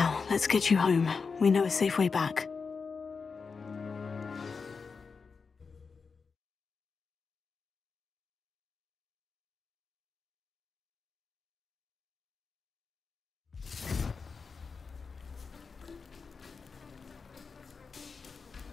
let's get you home. We know a safe way back.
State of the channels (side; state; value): right; quieter; 5.0 dB